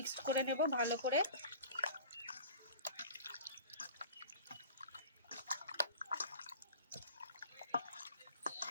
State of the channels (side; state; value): both; inverted; correlation -0.42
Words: করে নেব ভালো করে।